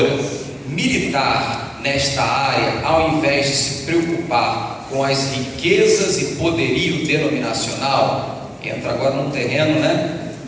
militar nesta área, ao invés de se preocupar com as riquezas e poderio denominacional? Entra agora num terreno,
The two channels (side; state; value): both; identical; correlation 1.00